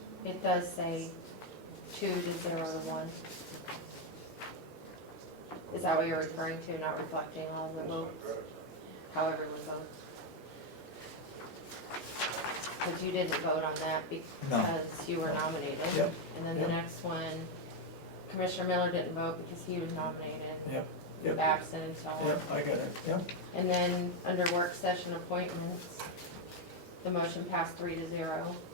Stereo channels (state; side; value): normal; both; correlation 0.04